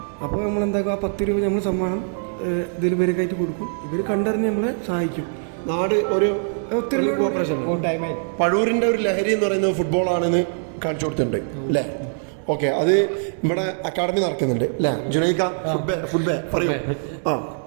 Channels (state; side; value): silent; left; 59 dB below the other